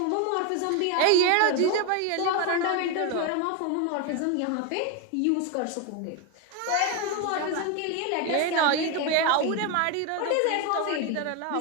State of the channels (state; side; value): different; both; correlation 0.02